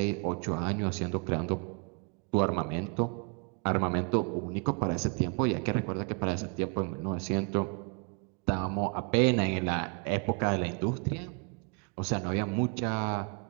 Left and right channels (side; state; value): left; quieter; 34.3 dB